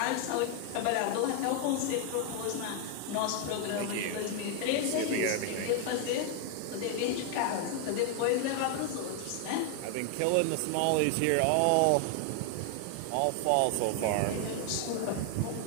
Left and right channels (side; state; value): both; different; correlation 0.00